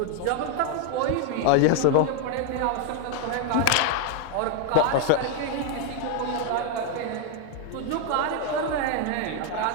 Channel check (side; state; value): both; different; correlation 0.01